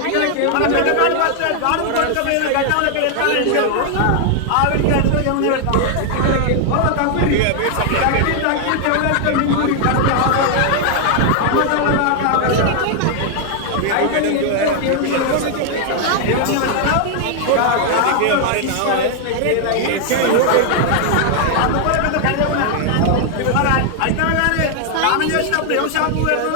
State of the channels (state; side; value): different; both; correlation 0.00